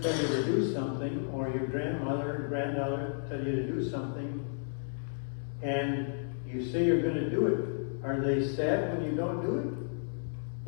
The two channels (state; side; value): silent; right; 56 dB below the other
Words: tell you to do something, or your grandmother or granddaughter tell you to do something, and you say you're going to do it, are they sad when you don't do it?